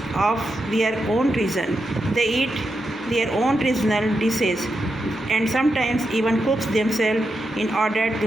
of their own region. They eat their own regional dishes and sometimes even cooks themselves in order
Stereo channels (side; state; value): both; normal; correlation 0.86